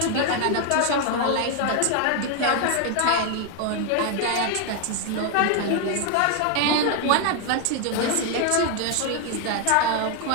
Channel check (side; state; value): both; different; correlation 0.01